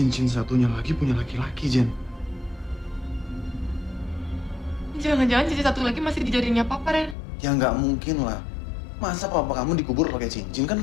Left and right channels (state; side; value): drops out; right; at 7.2 s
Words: satunya lagi punya laki-laki, Jen. Jangan-jangan cincin satu lagi masih di jarinya papa, Ren. Ya nggak mungkin lah. Masa papa kamu dikubur pakai cincin? Kan